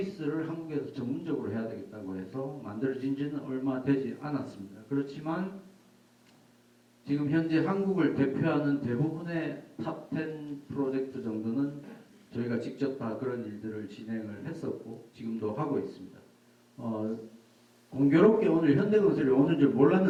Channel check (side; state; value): both; identical; correlation 1.00